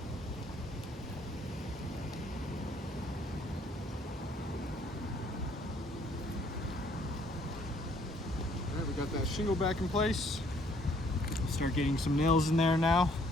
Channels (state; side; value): normal; both; correlation 0.64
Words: All right, we got that shingle back in place. Start getting some nails in there now.